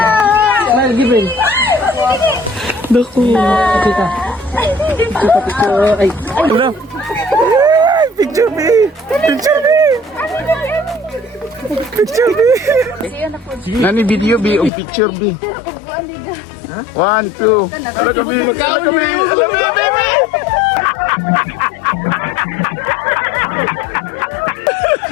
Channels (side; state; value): right; drops out; at 14.7 s